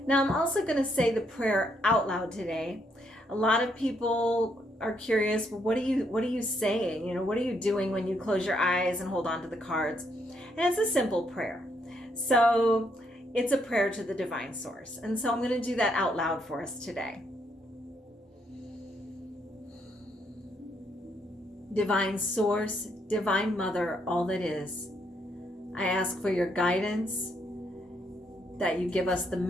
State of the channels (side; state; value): both; normal; correlation 0.74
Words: Now I'm also going to say the prayer out loud today. A lot of people are curious, well, what are you saying? You know, what are you doing when you close your eyes and hold on to the cards? And it's a simple prayer. So it's a prayer to the divine source. And so I'm going to do that out loud for us today. Divine source, divine mother, all that is, I ask for your guidance, that you give us the